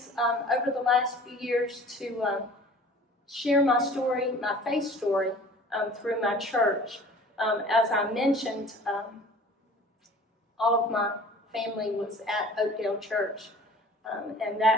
over the last few years to share my story, my faith story, through my church. As I mentioned, all of my family was at Oakdale Church, and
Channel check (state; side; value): normal; both; correlation 0.46